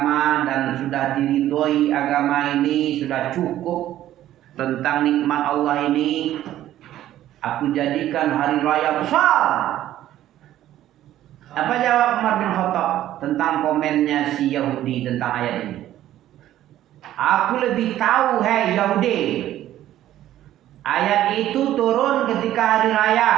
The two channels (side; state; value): left; quieter; 13.0 dB